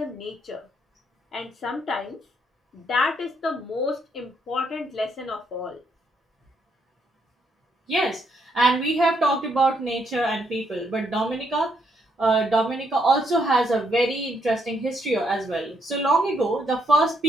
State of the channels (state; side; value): normal; both; correlation 0.74